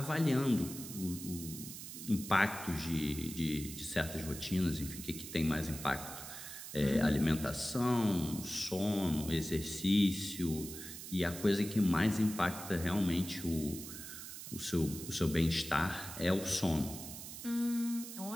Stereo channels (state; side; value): noise; right; hiss, 10 dB below the sound